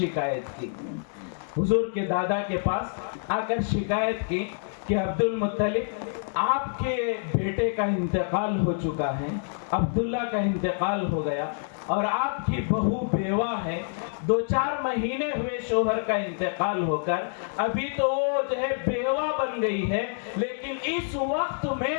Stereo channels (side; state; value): right; silent; digital silence